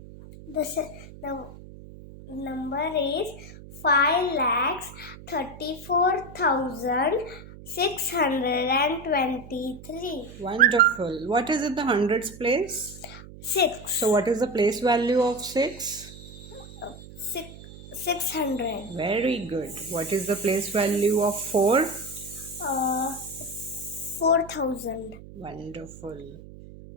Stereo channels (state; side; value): noise; right; hum, 16 dB below the sound